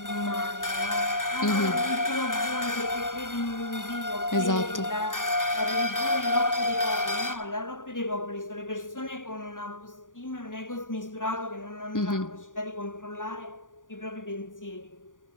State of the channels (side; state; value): right; late; 0.88 ms